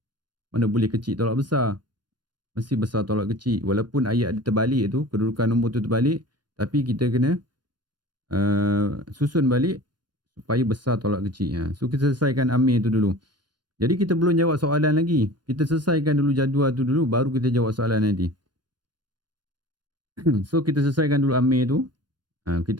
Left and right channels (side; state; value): left; late; 0.71 ms